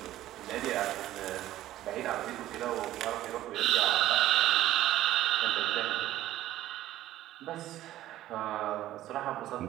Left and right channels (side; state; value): left; quieter; 14.1 dB